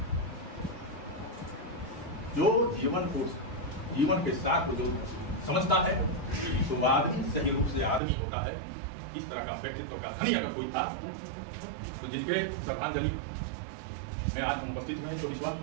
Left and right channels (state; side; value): drops out; left; at 8.0 s